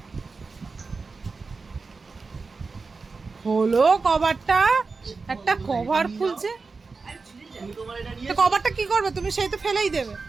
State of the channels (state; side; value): quieter; left; 4.3 dB